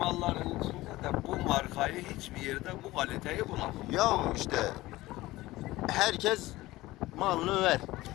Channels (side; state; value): right; quieter; 18.2 dB